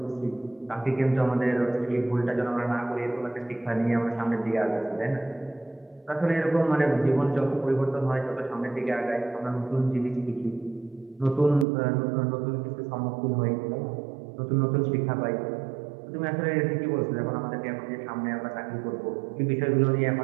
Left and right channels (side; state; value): left; drops out; at 11.7 s